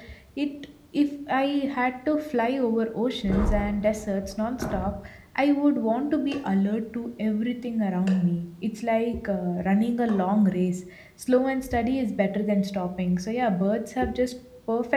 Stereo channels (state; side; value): identical; both; correlation 1.00